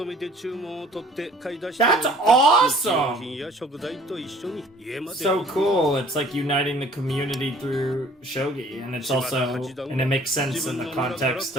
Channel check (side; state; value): both; normal; correlation 0.54